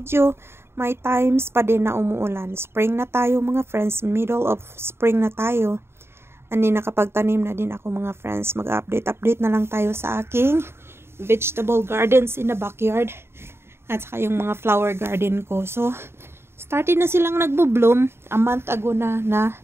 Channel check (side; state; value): left; late; 0.12 ms